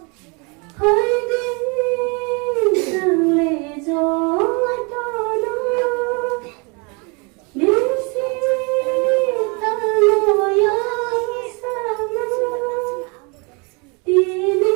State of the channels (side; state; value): left; quieter; 31.7 dB